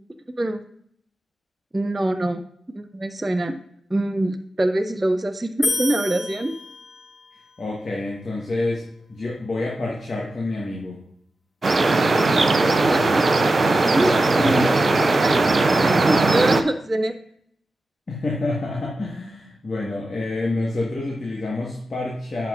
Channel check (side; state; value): both; normal; correlation 0.92